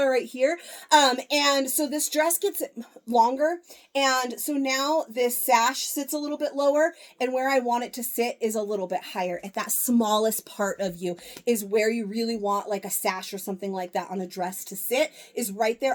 right here. And so this dress gets longer, and so now this sash sits a little bit lower, and where I want it to sit is a little bit higher. At that smallest part of you is where you really want like a sash or something like that on a dress to sit, is right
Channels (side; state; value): both; identical; correlation 1.00